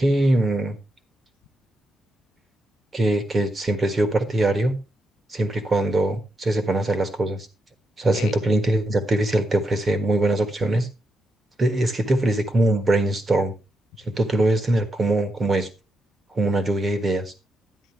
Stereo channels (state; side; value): normal; both; correlation 0.83